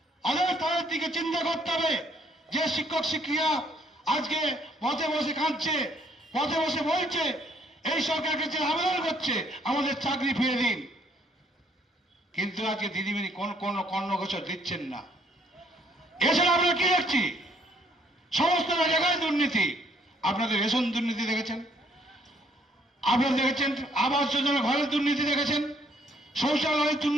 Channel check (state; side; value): normal; both; correlation 0.65